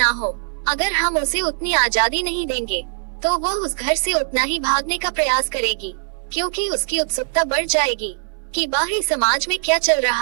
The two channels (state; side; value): silent; left; 65 dB below the other